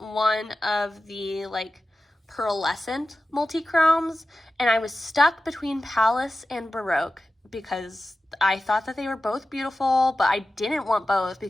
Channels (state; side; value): normal; both; correlation 0.93